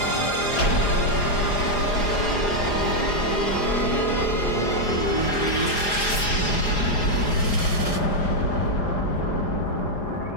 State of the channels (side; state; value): right; late; 4.9 ms